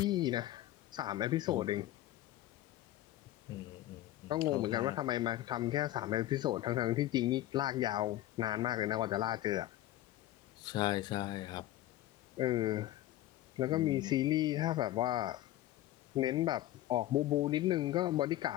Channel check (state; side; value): quieter; right; 14.8 dB